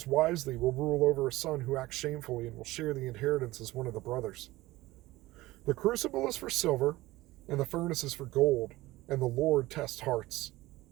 wisely will rule over a son who acts shamefully and will share the inheritance as one of the brothers. The crucible is for silver, and the furnace is for gold, and the Lord tests hearts.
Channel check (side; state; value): left; quieter; 18.5 dB